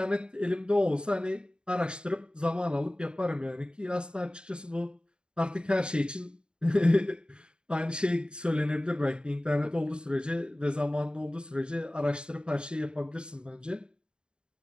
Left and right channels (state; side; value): late; left; 0.050 ms